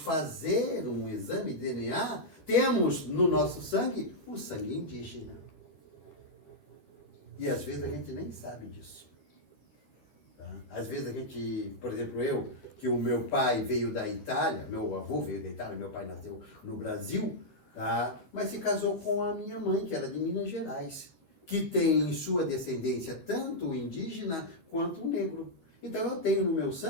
um exame de DNA, temos no nosso sangue o sangue indígena. E às vezes a gente nem sabe disso. Tá? Às vezes a gente, por exemplo, que o meu pai veio da Itália, meu avô veio da Itália, meu pai nasceu no Brasil, tá? Mas se casou com a minha mãe, que era de Minas Gerais, que tem em sua descendência tanto o indígena quanto o negro. Então eu tenho no meu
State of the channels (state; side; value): late; right; 12 ms